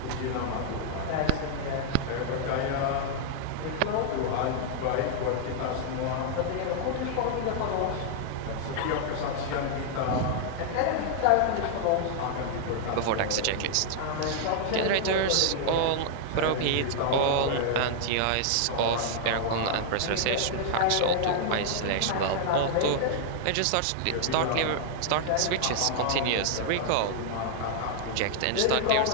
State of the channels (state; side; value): different; both; correlation -0.01